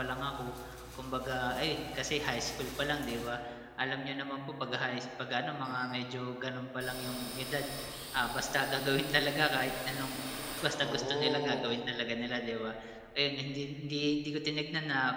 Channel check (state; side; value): identical; both; correlation 1.00